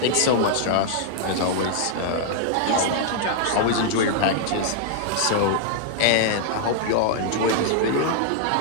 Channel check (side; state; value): both; different; correlation -0.01